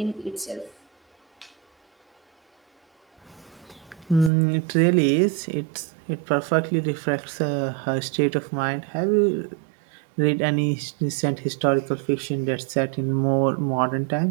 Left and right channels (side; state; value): left; drops out; at 4.3 s